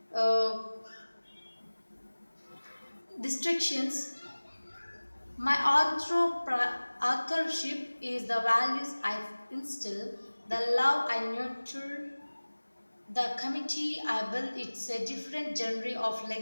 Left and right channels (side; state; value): both; inverted; correlation -1.00